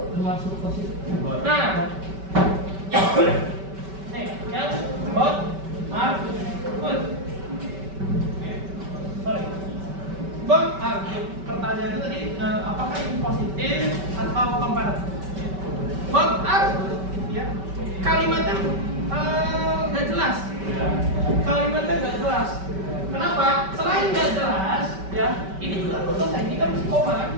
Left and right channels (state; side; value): late; left; 5.2 ms